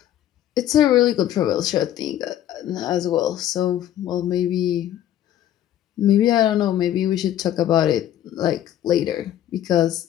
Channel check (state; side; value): quieter; right; 11.7 dB